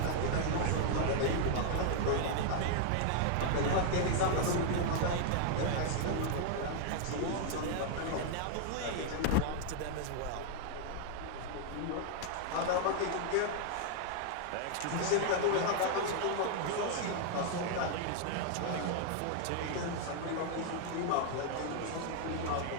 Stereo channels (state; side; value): different; both; correlation 0.00